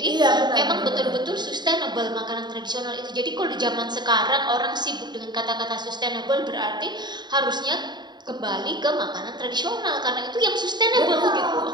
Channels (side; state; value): left; late; 0.21 ms